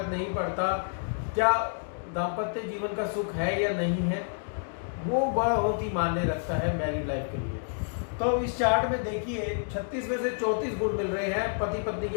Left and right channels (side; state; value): right; silent; digital silence